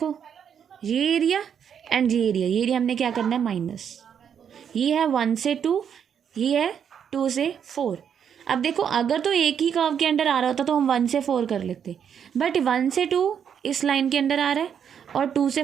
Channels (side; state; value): left; quieter; 8.1 dB